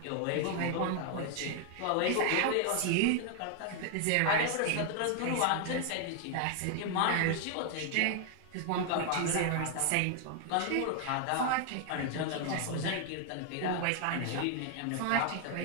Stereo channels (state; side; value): different; both; correlation 0.00